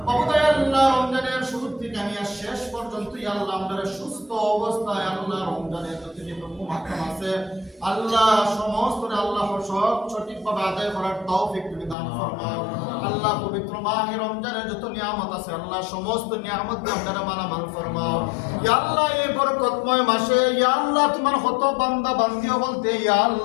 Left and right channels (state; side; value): drops out; right; at 12.0 s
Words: অবদায় আল্লাহ রমজানের শুরু থেকে নিয়ে শেষ পর্যন্ত আল্লাহ আমাদের সুস্থ অবস্থায় আল্লাহ রমজানের যতটুকু মাধ্যম আছে আল্লাহ সমস্ত আল্লাহ সঠিকভাবে আদায় করার তৌফিক তুমি দান ফরমাও আল্লাহ পবিত্র মাহে রমজানের যত নিয়ামত আছে আল্লাহ সমস্ত নিয়ামত দিয়ে আমরা মালামাল ফরমাও ইয়া আল্লাহ এই বরকতময় মাসে ইয়া আল্লাহ তোমার কত বান্দা বান্দিও বলতে ইয়া